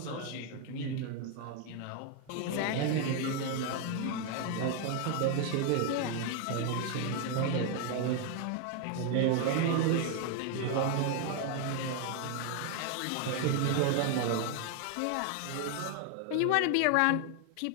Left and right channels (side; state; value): both; different; correlation 0.01